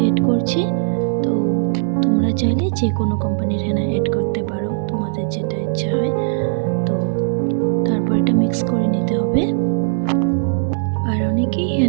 করছি। তো তোমরা চাইলে যে কোনো কোম্পানির হেনা অ্যাড করতে পারো, তোমাদের যেটা ইচ্ছা হয়। তো তারপর এটা মিক্স করে নিতে হবে। আর অনেকেই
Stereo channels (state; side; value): silent; left; digital silence